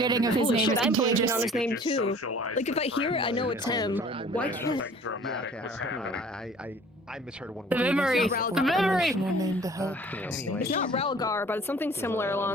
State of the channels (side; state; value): both; normal; correlation 0.50